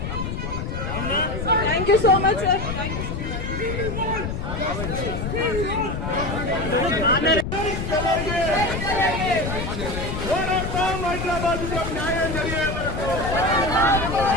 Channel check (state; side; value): noise; left; rumble, 4 dB below the sound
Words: Thank you so much sir.